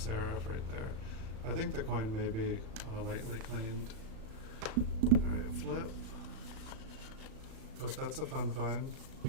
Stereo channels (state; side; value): late; left; 36 ms